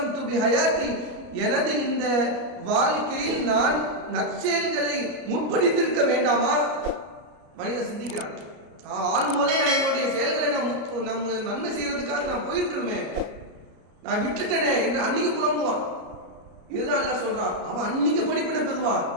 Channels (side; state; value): left; late; 33 ms